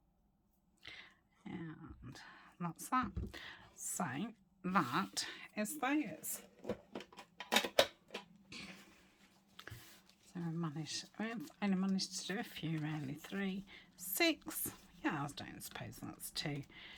And that's that. So that is those. So we've only managed to do a few really. 3, 6. Yeah, I don't suppose that's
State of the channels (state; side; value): identical; both; correlation 1.00